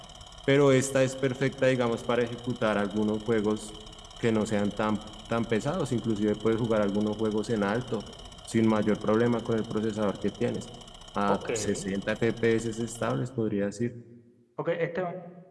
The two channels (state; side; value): identical; both; correlation 1.00